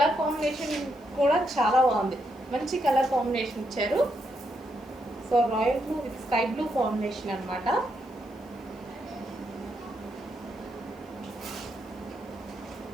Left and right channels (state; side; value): noise; left; hiss, 30 dB below the sound